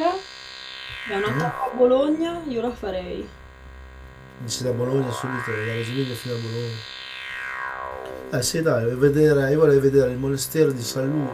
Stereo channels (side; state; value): both; identical; correlation 1.00